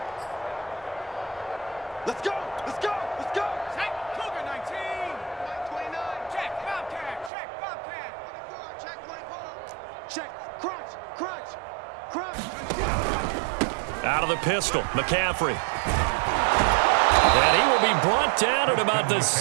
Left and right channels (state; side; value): drops out; left; at 7.3 s